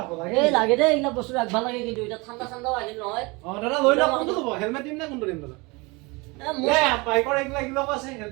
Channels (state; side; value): quieter; left; 26.1 dB